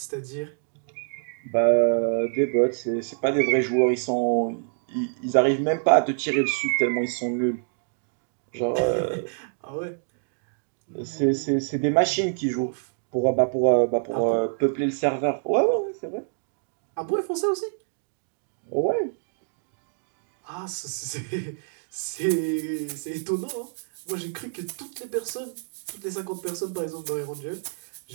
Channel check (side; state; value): left; silent; digital silence